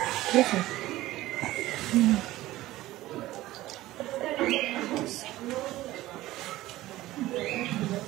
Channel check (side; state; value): left; quieter; 16.5 dB